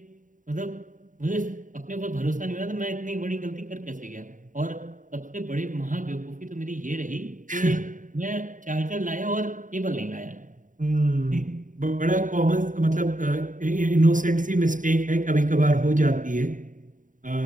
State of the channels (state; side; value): late; left; 0.38 ms